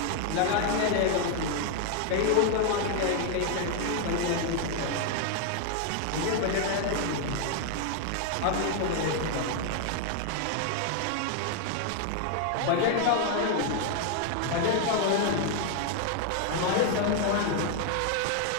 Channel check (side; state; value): both; different; correlation 0.00